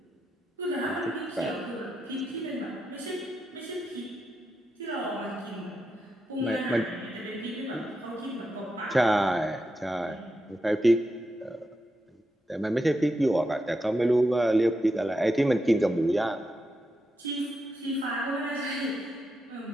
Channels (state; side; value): normal; both; correlation 0.86